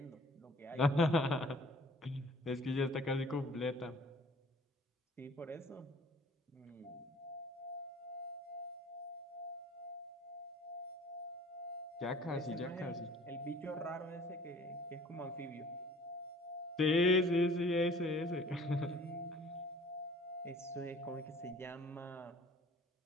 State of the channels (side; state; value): both; normal; correlation 0.52